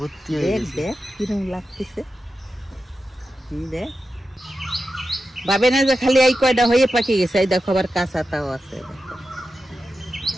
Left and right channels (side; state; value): both; normal; correlation 0.91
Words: হয়ে গেছে। দেখ কিরম লাগতেছে, দেখ ভাবে না যে খালি এই কয়টা হয়ে পাকি গেছে। এই দেখো আবার কাঁচাটাও আছে,